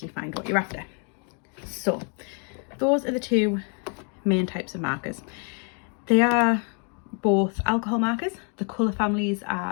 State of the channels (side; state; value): right; quieter; 39.9 dB